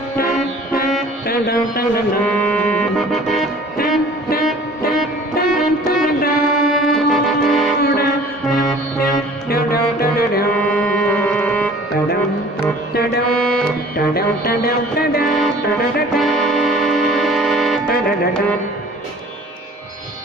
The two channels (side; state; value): both; normal; correlation 0.49